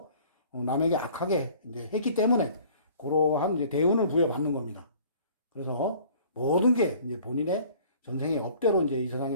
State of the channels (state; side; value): inverted; both; correlation -0.51